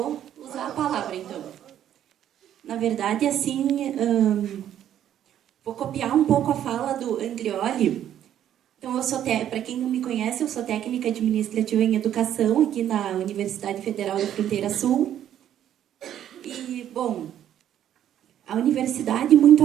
usar a palavra, então. Na verdade, assim, vou copiar um pouco a fala do Andrioli. Então, para quem não me conhece, eu sou técnica administrativa em educação aqui na Universidade Federal da Fronteira Sul. E, bom, a universidade, muito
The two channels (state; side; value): quieter; left; 10.8 dB